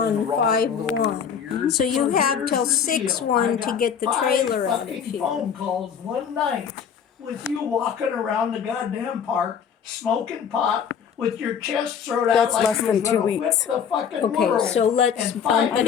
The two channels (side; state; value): right; quieter; 7.5 dB